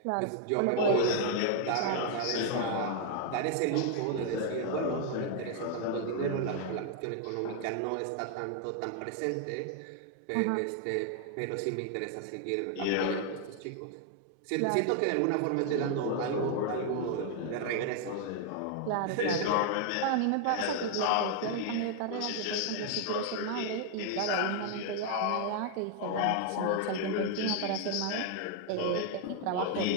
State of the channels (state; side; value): different; both; correlation 0.00